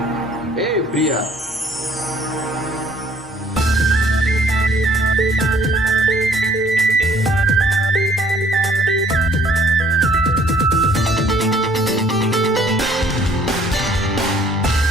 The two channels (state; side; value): normal; both; correlation 0.59